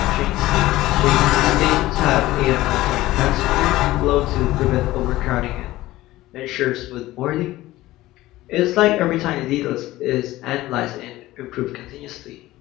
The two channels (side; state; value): right; quieter; 17.0 dB